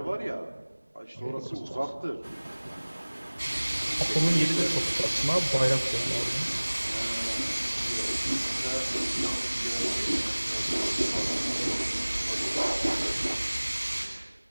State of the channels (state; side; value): inverted; both; correlation -1.00